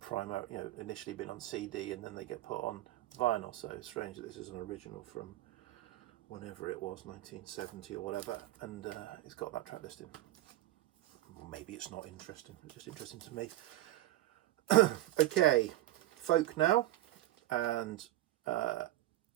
initially been on CD and then they get put on vinyl. So it's strange that this is an original from whenever it was, 1970 or whatever, and it's got that track listing. Maybe it's not interesting, it's just interesting to me. Okay, folk now, and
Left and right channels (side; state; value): left; quieter; 15.6 dB